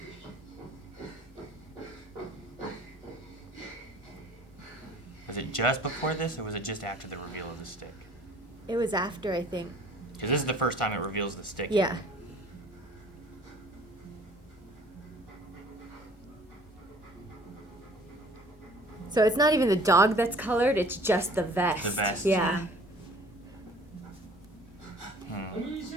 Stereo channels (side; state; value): both; normal; correlation 0.52